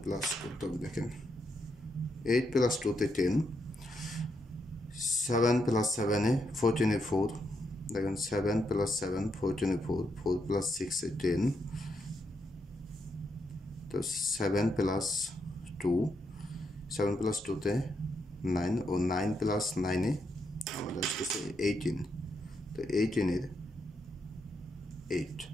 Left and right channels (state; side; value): normal; both; correlation 0.80